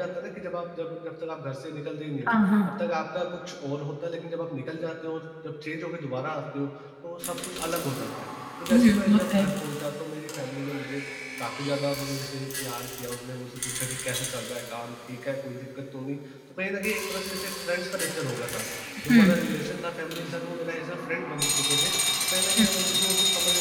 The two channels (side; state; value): both; identical; correlation 1.00